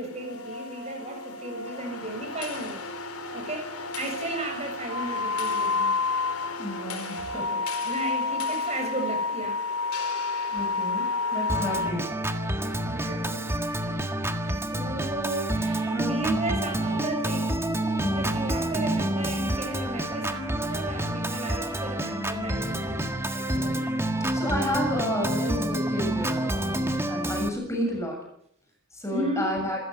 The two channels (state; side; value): normal; both; correlation 0.42